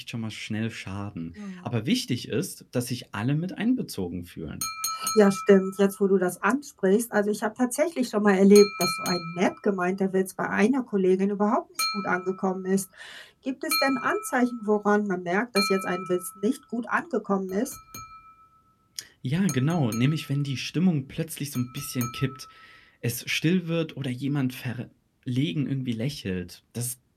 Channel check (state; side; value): identical; both; correlation 1.00